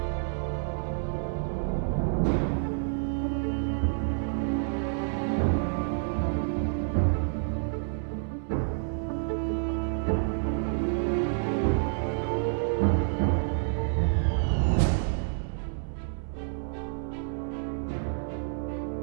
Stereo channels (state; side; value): silent; left; 59 dB below the other